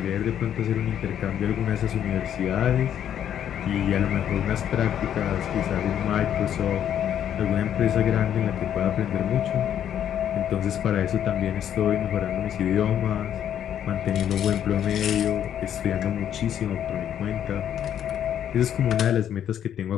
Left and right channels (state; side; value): quieter; right; 9.9 dB